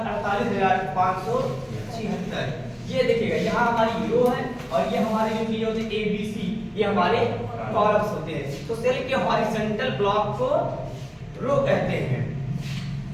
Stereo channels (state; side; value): identical; both; correlation 1.00